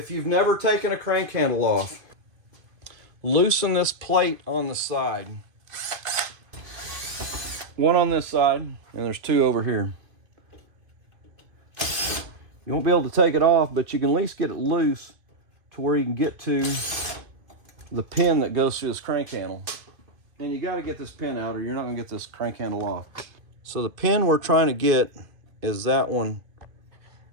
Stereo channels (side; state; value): left; late; 2.5 ms